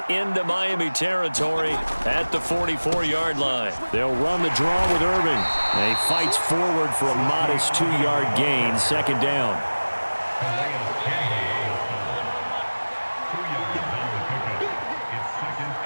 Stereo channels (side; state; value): both; inverted; correlation -1.00